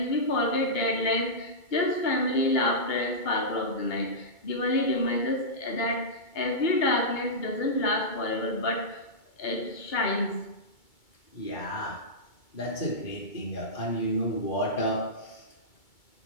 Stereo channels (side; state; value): right; late; 2.2 ms